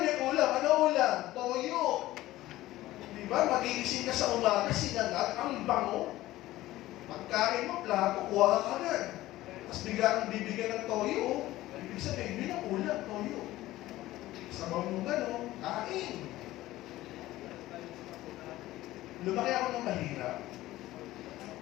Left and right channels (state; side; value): quieter; right; 16.3 dB